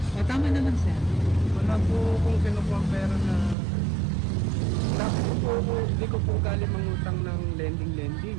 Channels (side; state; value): left; drops out; at 3.6 s